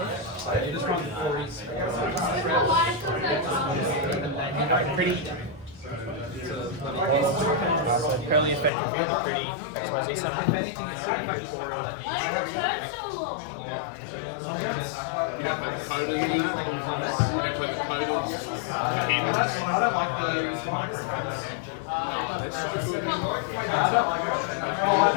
Pretty. So Purrely effect reveal the pretty XYZ summon. Beauty.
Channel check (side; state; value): right; drops out; at 8.7 s